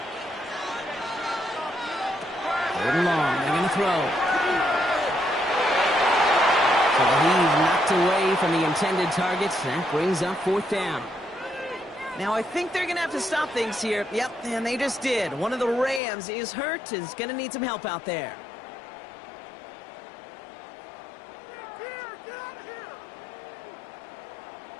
3rd and long, they're going to throw. So the heave knocked away from the intended targets. That brings up 4th down. Now, I think they're going to have to stop things here. Yep, and they just did. One of the Rams is hurt, is going to need some help out there.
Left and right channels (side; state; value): right; drops out; at 16.0 s